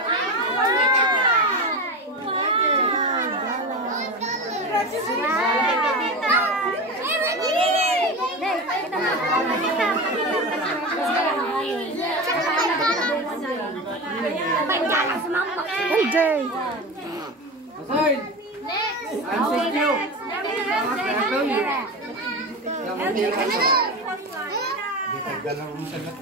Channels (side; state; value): both; normal; correlation 0.24